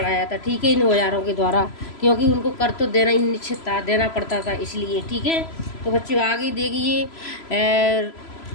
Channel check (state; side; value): late; right; 3.0 ms